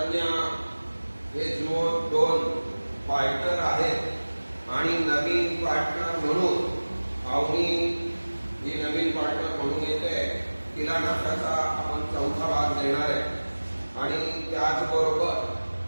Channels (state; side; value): inverted; both; correlation -1.00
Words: हे जो दोन पार्टनर आहेत आणि नवीन पार्टनर म्हणून अवनी ही नवीन पार्टनर म्हणून येते. तिला नफ्याचा आपण चौथा भाग देणार आहे आणि त्याचबरोबर